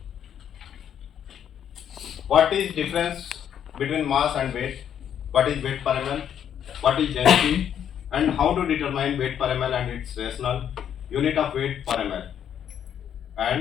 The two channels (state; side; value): quieter; right; 9.2 dB